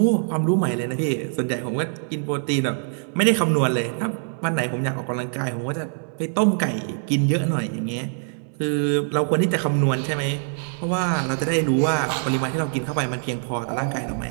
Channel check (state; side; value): silent; left; 63 dB below the other